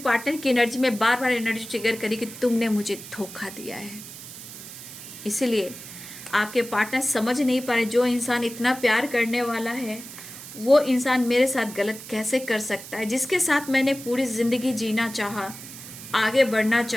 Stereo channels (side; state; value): right; noise; hiss, 13 dB below the sound